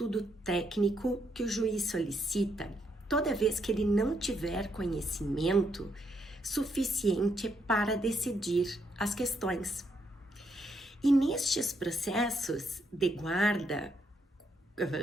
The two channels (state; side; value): normal; both; correlation 0.76